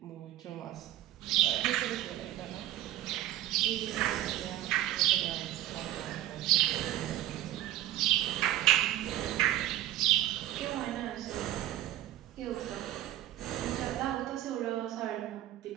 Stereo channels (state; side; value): quieter; left; 13.7 dB